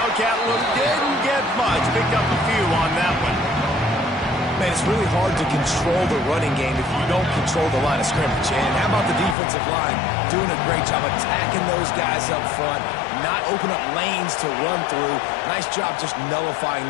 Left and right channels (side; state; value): right; drops out; at 9.3 s